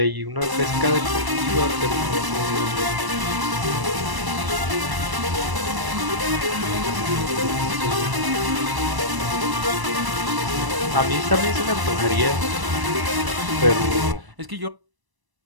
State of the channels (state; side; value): late; left; 1.0 ms